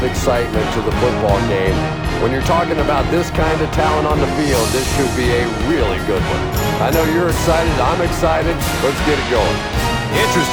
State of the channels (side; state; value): both; identical; correlation 1.00